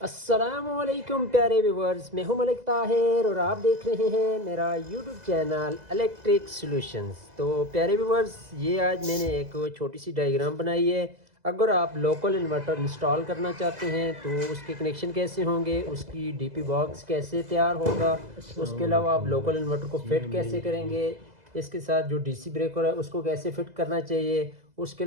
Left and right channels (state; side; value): late; left; 2.0 ms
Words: अस्सलामुअलैकुम प्यारे व्यूवर्स, मैं हूं मलिक ताहिर और आप देख रहे हैं मेरा यूट्यूब चैनल इलेक्ट्रिक सॉल्यूशंस। तो प्यारे व्यूवर्स, ये आज मैंने एक छोटी सी डायग्राम बनाई है। अगर आप लोकल इन्वर्टर इंस्टॉल करना चाहते हैं तो उसके कनेक्शन कैसे होंगे, उसकी डीपी बॉक्स कैसे तैयार होगा, उसके अलावा आप लोकल इन्वर्टर को फिट कैसे करेंगे, इसके साथ जो डीसी ब्रेकर है उसको कैसे फिट करना चाहिए, उसके